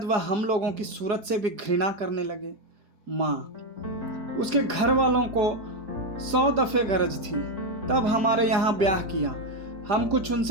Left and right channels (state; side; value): late; left; 4.9 ms